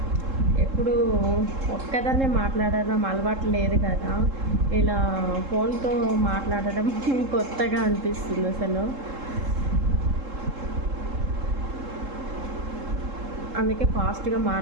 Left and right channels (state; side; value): late; left; 3.7 ms